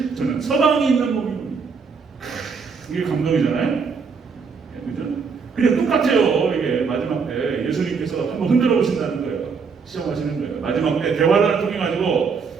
서방이 있는 몸이군요. 이게 감동이잖아요? 그죠? 그냥 똑같아요. 이게 마지막 때 예수님께서 한번 흔들어 보신다는 거예요. 시험하시는 거예요. 마지막 때 대화를 통해 가지고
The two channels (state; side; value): quieter; left; 5.4 dB